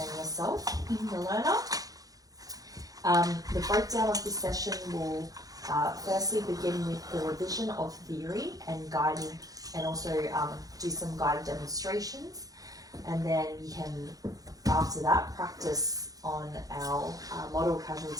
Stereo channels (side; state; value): left; late; 0.17 ms